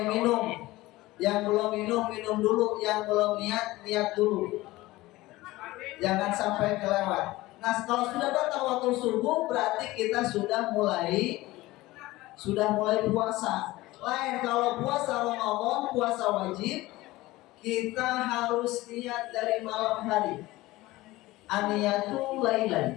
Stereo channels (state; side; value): quieter; right; 18.7 dB